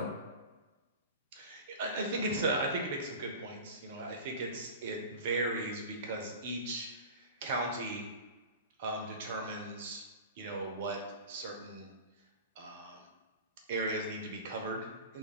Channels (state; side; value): inverted; both; correlation -0.34